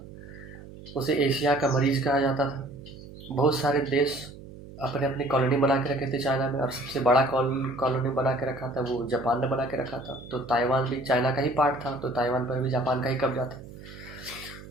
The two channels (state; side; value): noise; right; hum, 16 dB below the sound